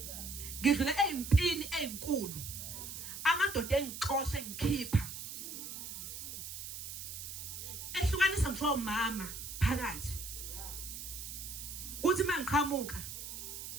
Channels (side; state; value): right; noise; hiss, 8 dB below the sound